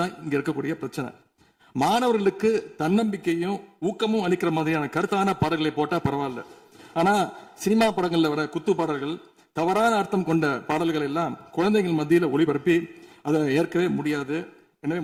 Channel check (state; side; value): identical; both; correlation 1.00